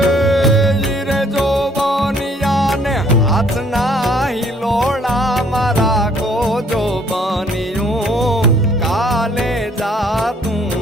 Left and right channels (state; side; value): normal; both; correlation 0.62